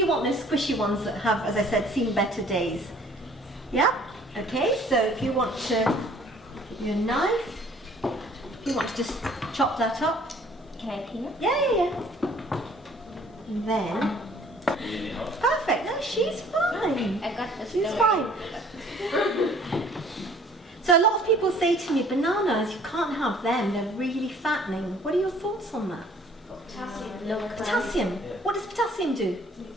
want those squishy ones that have, as I said, seen better days. Yeah? Okay, so if you want to, give you a knife, if you want to just chop that up. Can I clean it? Yeah. And then, perfect, no, she's fine. I got this. She's fine. So a lot of people say to me, bananas, you can't have them, they're really fattening. What are your thoughts on that? Potassium. Potassium. What does potassium do?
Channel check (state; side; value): normal; both; correlation 0.56